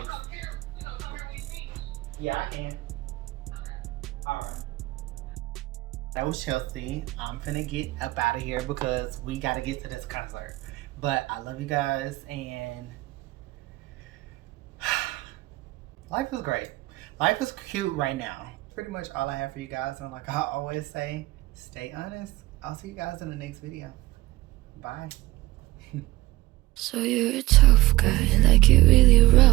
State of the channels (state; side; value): quieter; left; 18.2 dB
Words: Yeah, I can. Alright. That was Chelsea. I'm finna get up out of here because we gotta get to this concert. But I love you guys, and life is great. Life is cute right now. Pretty much all I have for you guys, and like I always say, stay honest. I'll see you guys in the next video. Bye. So you're a tough guy, like it really